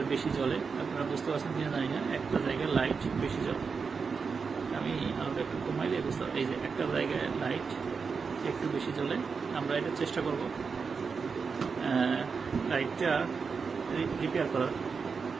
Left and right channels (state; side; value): quieter; left; 5.3 dB